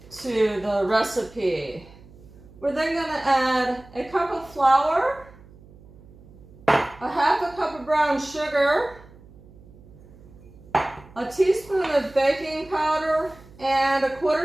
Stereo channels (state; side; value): noise; right; hum, 23 dB below the sound